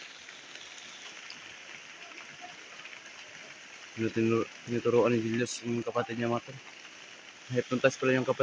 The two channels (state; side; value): identical; both; correlation 1.00